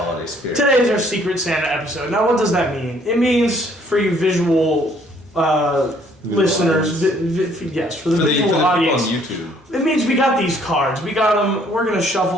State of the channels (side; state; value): both; normal; correlation 0.62